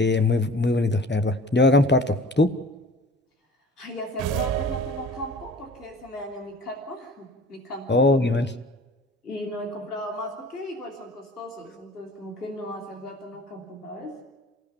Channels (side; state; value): both; normal; correlation 0.45